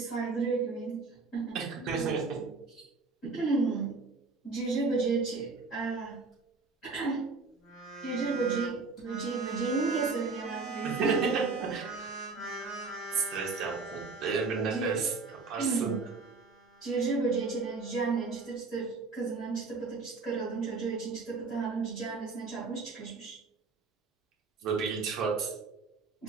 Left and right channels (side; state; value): left; quieter; 4.2 dB